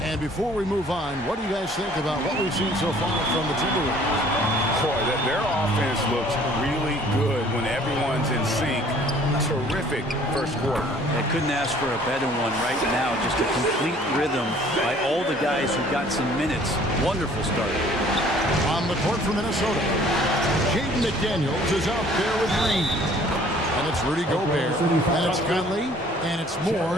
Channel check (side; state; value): both; normal; correlation 0.55